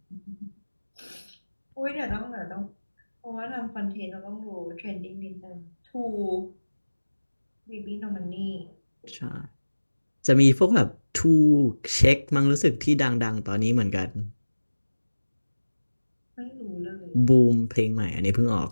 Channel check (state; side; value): inverted; both; correlation -1.00